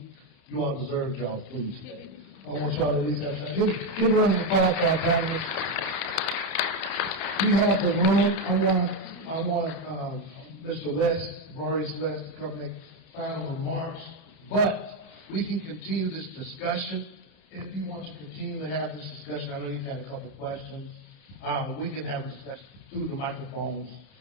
you all deserve y'all's food today. I want y'all to at least have something. Give a round of applause for our panelists. We have the room. I want Mr. West, Maurice West, to come make final remarks. But we can continue this discussion. If you want to continue to have this discussion, I know you've had a couple questions. We can have a discussion through the microphones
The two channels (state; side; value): late; right; 30 ms